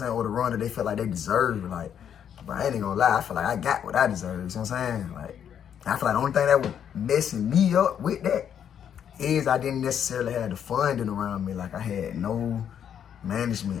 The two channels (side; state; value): right; quieter; 8.8 dB